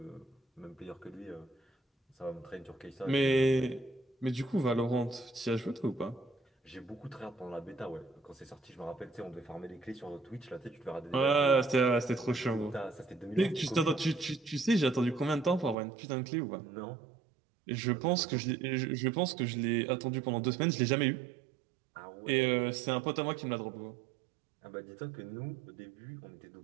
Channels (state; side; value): drops out; left; at 15.8 s